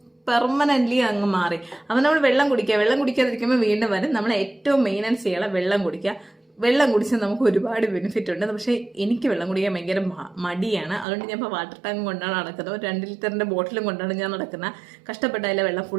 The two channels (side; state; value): left; drops out; at 11.1 s